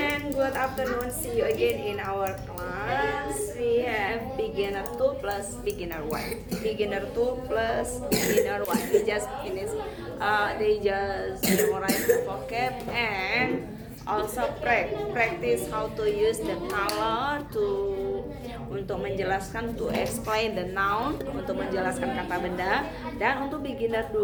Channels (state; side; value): identical; both; correlation 1.00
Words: good afternoon. See you again in our class. We have beginner 2 plus beginner 1. Beginner 2 plus beginner 1. We just finished. They just memorize the vocab and also practice how to use the color untuk menjelaskan, to explain the noun, untuk menjelaskan kata benda. Dan untuk beginner